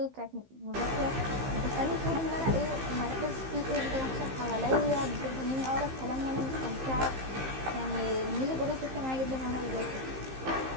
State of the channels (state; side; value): late; left; 15 ms